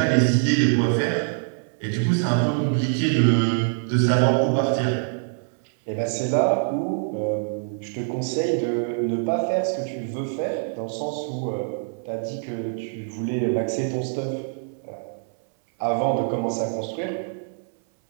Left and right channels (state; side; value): silent; left; 62 dB below the other